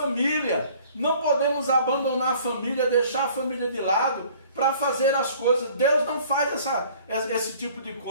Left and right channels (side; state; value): both; inverted; correlation -0.53